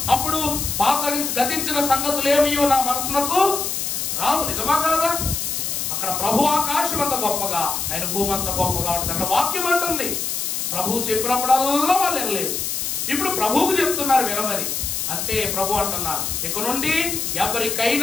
అప్పుడు పాత గతించిన సంగతులు ఏమియో నా మనసునకు రావు. నిజమా కాదా? అక్కడ ప్రభు ఆకాశం అంత గొప్పగా, ఆయన భూమి అంత గొప్పగా ఉంటుంది. అక్కడ వాక్యం అంటుంది, ప్రభు చెప్పినప్పుడల్లా వాళ్ళు వినలేదు. ఇప్పుడు ప్రభువుకు చెప్తున్నారు వినమని. అంతే ప్రభు అంటున్నారు, ఇక నుండి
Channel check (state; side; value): noise; left; hiss, 2 dB below the sound